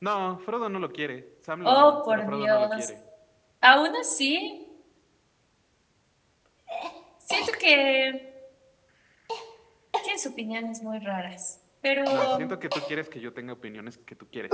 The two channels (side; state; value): both; identical; correlation 1.00